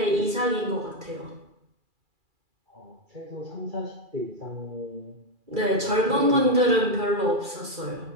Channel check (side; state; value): left; late; 2.3 ms